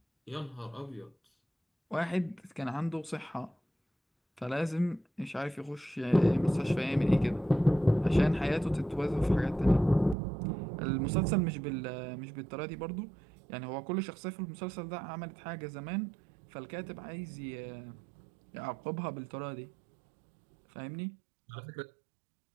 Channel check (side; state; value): left; drops out; at 10.2 s